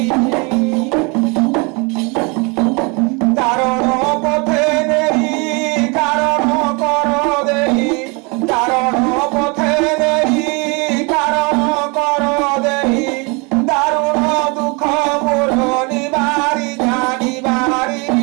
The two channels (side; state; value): left; quieter; 30.1 dB